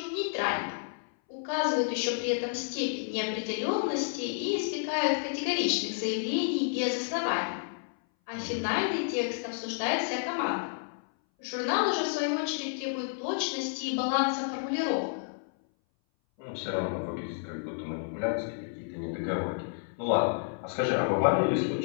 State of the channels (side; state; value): right; silent; 58 dB below the other